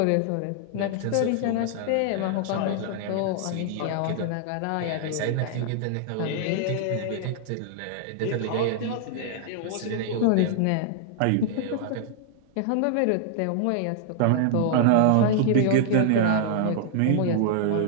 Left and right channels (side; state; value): both; different; correlation -0.01